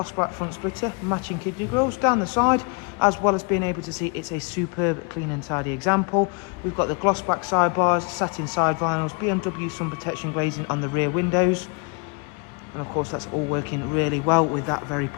black front splitter, matching kidney grills down the side, as well as being able to see it's a superb clean and tidy example. We've got the gloss black sidebars, satin side vinyls, BMW sun protection glazing on the rear windows, and of course that's all working really well with that very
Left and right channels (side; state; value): right; quieter; 33.2 dB